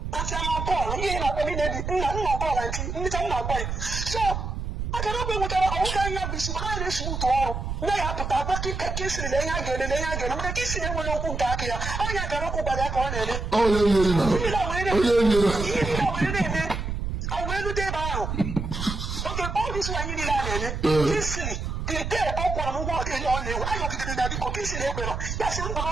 That's how Paul, he ain't a minute, not Paul, I'm not quite. So, I cannot go with our own young business. I just move to all. They have to have a kiss in the again, and they are going to kiss in one open back here. I cannot go by that corner. Oh, yeah. I will do that. Okay, all this one you need easily. They tell up one walk in on the I don't get that because that's a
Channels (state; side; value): noise; right; rumble, 4 dB below the sound